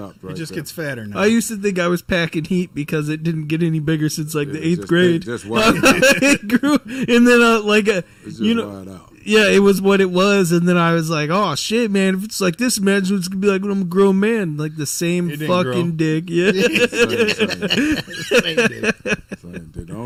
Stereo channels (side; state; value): both; identical; correlation 1.00